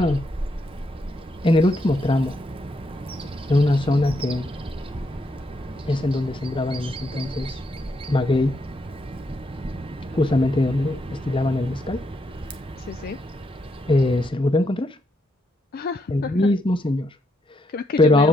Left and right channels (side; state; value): both; normal; correlation 0.79